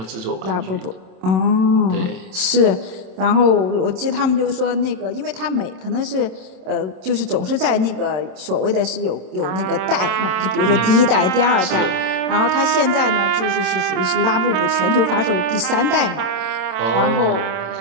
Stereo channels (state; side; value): late; left; 27 ms